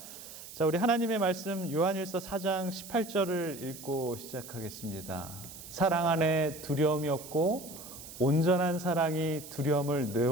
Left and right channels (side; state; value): right; noise; hiss, 14 dB below the sound